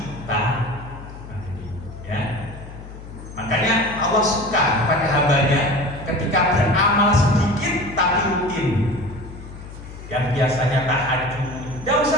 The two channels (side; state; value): left; noise; hum, 14 dB below the sound